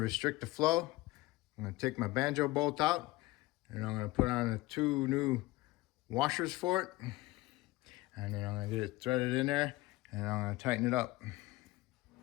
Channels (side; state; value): right; quieter; 19.4 dB